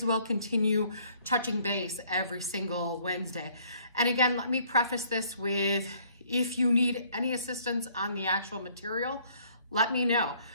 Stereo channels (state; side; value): inverted; both; correlation -0.61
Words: well continue touching base every single Wednesday. And again, let me preface this with, if you need any assistance on the actual material, let me know.